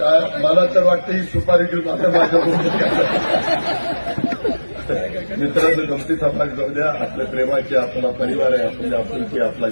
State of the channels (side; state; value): both; inverted; correlation -1.00